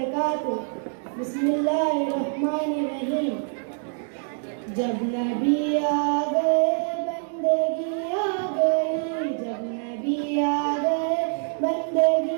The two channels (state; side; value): silent; left; 62 dB below the other